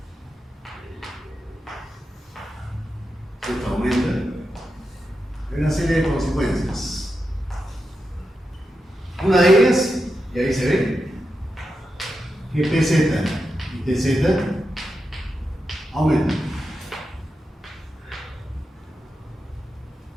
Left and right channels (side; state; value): both; normal; correlation 0.88